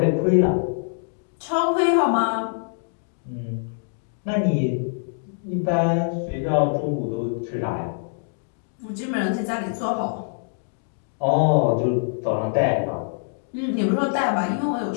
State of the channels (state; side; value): silent; right; digital silence